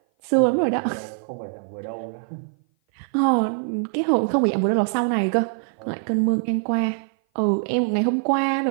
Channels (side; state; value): left; silent; 57 dB below the other